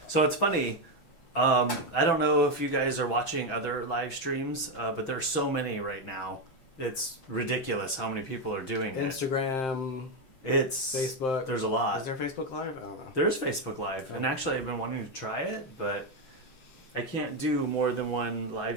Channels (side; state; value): right; late; 6.1 ms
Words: So it's funny. I don't know if you guys are watching other live streams, but there's so many right now. It's ridiculous how many people are doing it. Instagram. It's Facebook. There's a lot. Is there Facebook Live? I don't know. There's Facebook Live, and actually I've been wanting to try it, but I can't do more than one